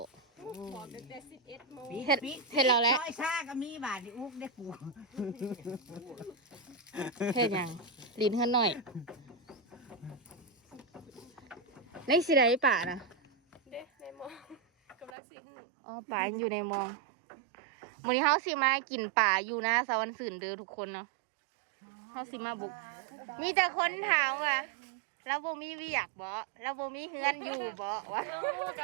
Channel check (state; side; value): drops out; left; at 15.1 s